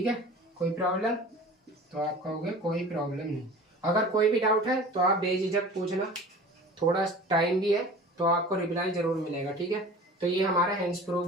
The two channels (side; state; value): both; normal; correlation 0.41